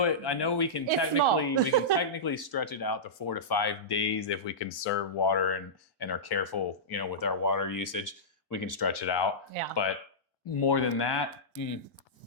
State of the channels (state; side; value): normal; both; correlation -0.15